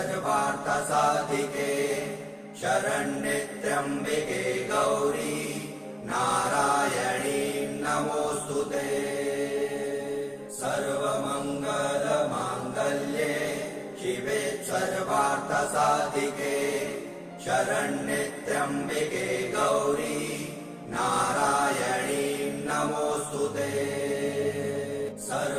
शरण्ये त्र्यम्बिके गौरी नारायणी नमोऽस्तुते। सर्वमङ्गलमाङ्गल्ये शिवे सर्वार्थसाधिके शरण्ये त्र्यम्बिके गौरी नारायणी नमोऽस्तुते।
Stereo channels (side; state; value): both; identical; correlation 1.00